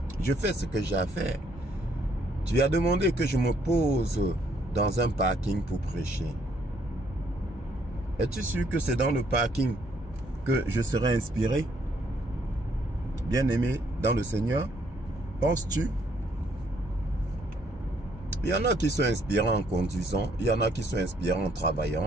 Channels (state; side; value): normal; both; correlation 0.68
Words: Je fais ce que j'ai à faire. Tu as demandé que je me pose dans un parking pour prêcher. Es-tu sûr que c'est dans le parking que je serai inspiré? Bien-aimé dans le Seigneur, penses-tu? Il y en a qui sont inspirants en conduisant, il y en a qui sont inspirants en